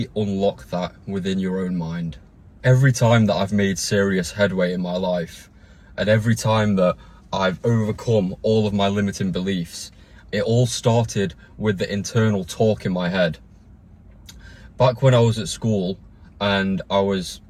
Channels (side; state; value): both; identical; correlation 1.00